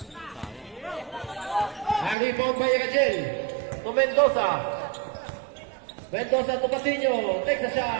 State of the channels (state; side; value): drops out; left; at 2.1 s